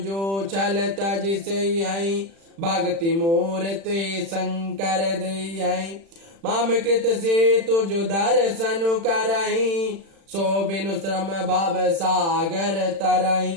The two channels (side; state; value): left; late; 36 ms